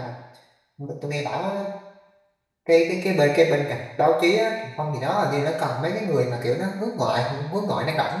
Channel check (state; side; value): identical; both; correlation 1.00